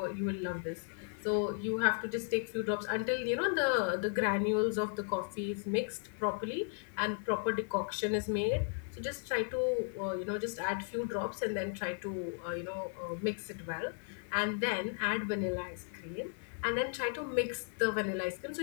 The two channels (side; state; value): right; silent; 54 dB below the other